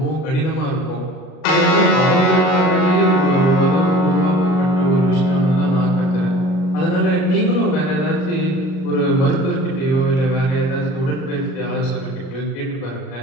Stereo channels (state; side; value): late; right; 38 ms